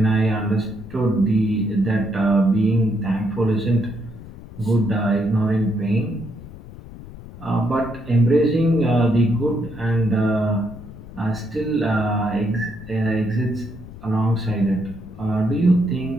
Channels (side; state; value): left; noise; rumble, 16 dB below the sound